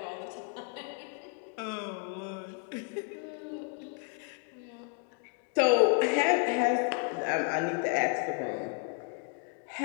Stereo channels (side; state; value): right; quieter; 34.5 dB